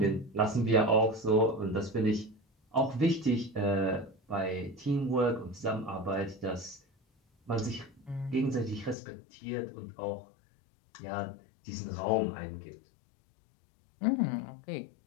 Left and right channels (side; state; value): right; drops out; at 9.0 s